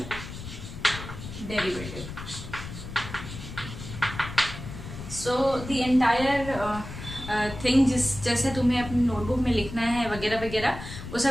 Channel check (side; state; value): left; noise; rumble, 10 dB below the sound